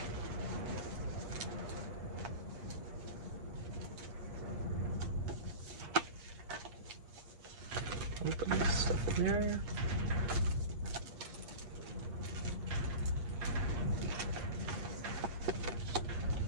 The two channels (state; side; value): late; left; 8.5 ms